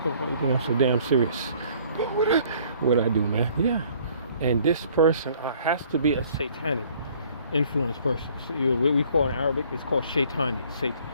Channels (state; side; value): inverted; both; correlation -0.58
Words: think I'm so damn serious? What I do, man? Yeah. And this person has to be a satanic influence person. So, what we call in Arabic, it's called shaitani.